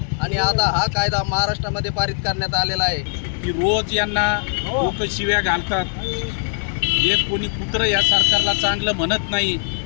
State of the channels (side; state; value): right; silent; 65 dB below the other